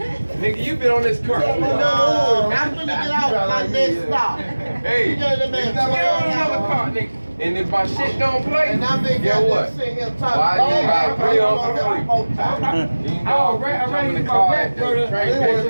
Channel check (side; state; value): both; inverted; correlation -1.00